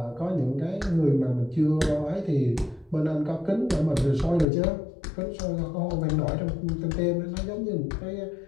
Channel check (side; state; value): right; drops out; at 4.5 s